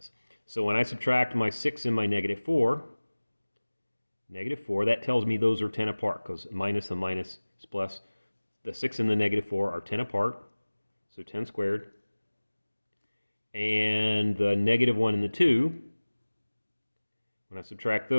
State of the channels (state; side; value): inverted; both; correlation -1.00